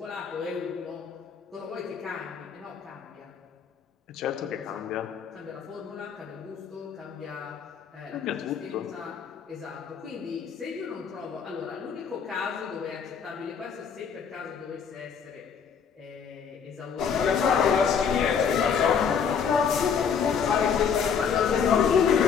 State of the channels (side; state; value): right; quieter; 6.8 dB